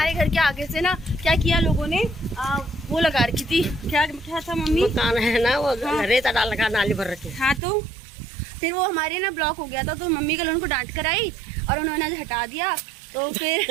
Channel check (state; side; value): drops out; left; at 7.6 s